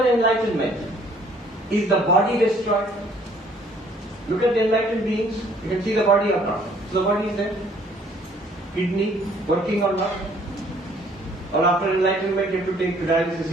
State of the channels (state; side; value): normal; both; correlation 0.60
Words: enlightenment, is the body destroyed? Look at the enlightened beings. You can see the body or not. So the body is there. Kidney working or not? Or after enlightenment you have to take dialysis